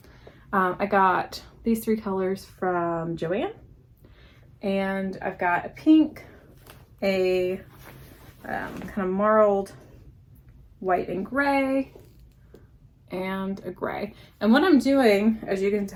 I got these 3 colors from Joann, and I've got a pink, a kind of marled white and gray, and a gray. And what I'm doing, as you can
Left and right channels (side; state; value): both; identical; correlation 1.00